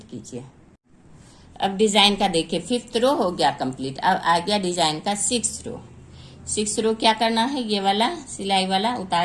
कीजिए। अब डिजाइन का देखिए 5th रो हो गया कंप्लीट। अब आ गया डिजाइन का 6th रो। 6th रो क्या करना है, ये वाला सिलाई वाला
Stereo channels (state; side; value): identical; both; correlation 1.00